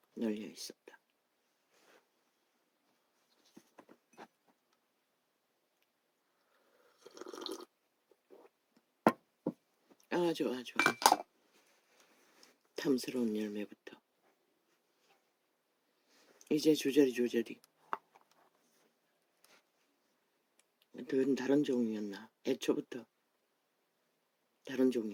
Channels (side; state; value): both; identical; correlation 1.00